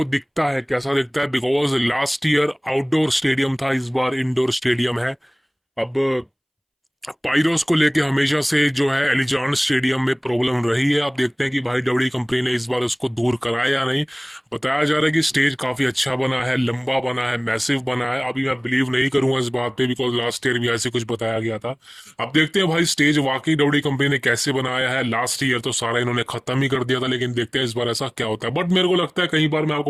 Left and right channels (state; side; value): identical; both; correlation 1.00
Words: दिखता है कैसा दिखता है, because last year outdoor stadium था, इस बार इंडोर स्टेडियम है। अब पाइरोस को लेके हमेशा से जो है एलिजान स्टेडियम में प्रॉब्लम रही है। आप देखते हैं कि भाई डब्ल्यू कंपनी ने इस बार उसको दूर कराया या नहीं। बताया जा रहा है कि स्टेज काफी अच्छा बना है, लंबा बना है, मैसिव बना है। अभी मैं बिलीव नहीं करूंगा इस बात पे, बिकॉज लास्ट ईयर भी ऐसे कुछ बताया गया था। अब देखते हैं भाई स्टेज वाकई डब्ल्यू कंपनी ने कैसे बनाया है। लास्ट ईयर तो सारा इन्होंने खत्म ही कर दिया था, लेकिन देखते हैं इस बार ऐसा क्या होता है। बट मेरे को लगता है, कई बार मैं